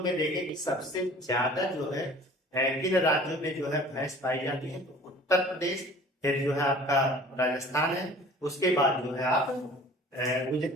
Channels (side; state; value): both; normal; correlation 0.47